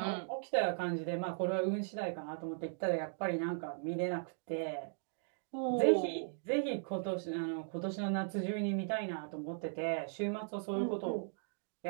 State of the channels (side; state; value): left; silent; digital silence